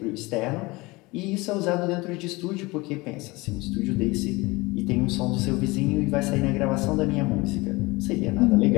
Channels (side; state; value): right; quieter; 23.0 dB